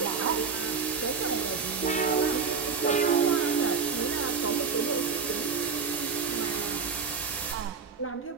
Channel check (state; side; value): quieter; left; 5.5 dB